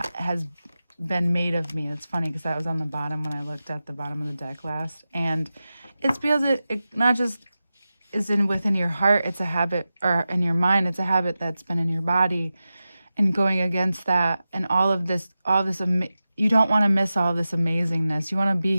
has been made of me. It's funny because that was on the bottom when I looked at the bottom of the deck last, and it's because it not just is within your heart, it's a habit, or in your mind, it's a habit that's been in your body, and going against that, and all this you don't want to miss all this amazingness. You want to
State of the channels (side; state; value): both; inverted; correlation -0.93